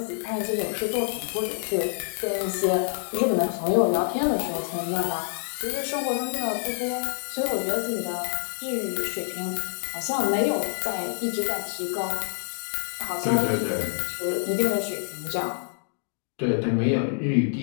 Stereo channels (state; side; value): silent; right; digital silence